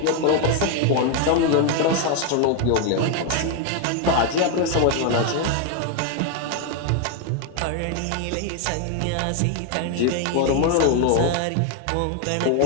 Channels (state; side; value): different; both; correlation 0.01